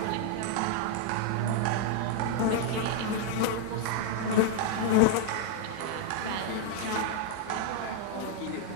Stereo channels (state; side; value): different; both; correlation 0.00